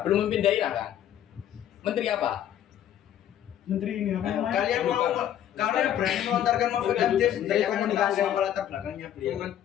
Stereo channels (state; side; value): quieter; right; 10.8 dB